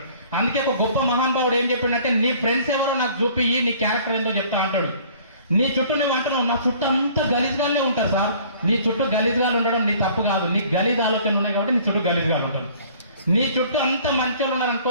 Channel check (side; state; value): both; inverted; correlation -0.53